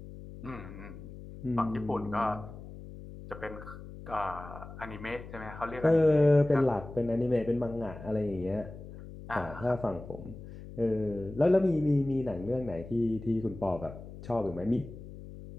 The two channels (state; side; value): noise; left; hum, 14 dB below the sound